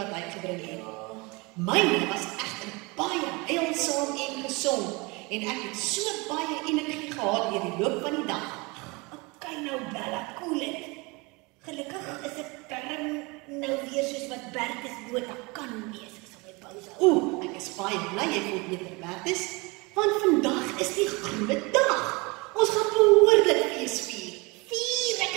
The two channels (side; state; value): left; quieter; 26.5 dB